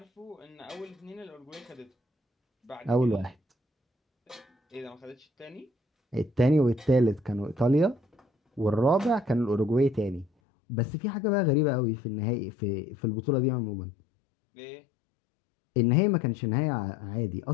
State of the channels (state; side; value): drops out; right; at 10.3 s